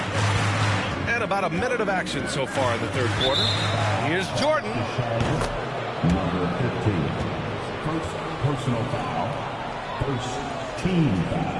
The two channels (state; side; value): identical; both; correlation 1.00